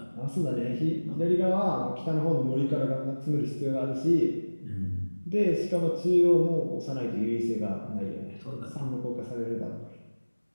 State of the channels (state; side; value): inverted; both; correlation -1.00